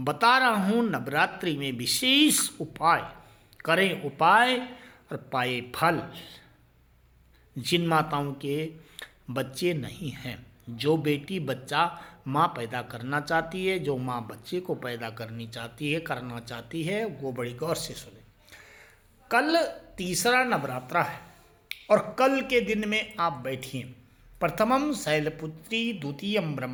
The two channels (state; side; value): identical; both; correlation 1.00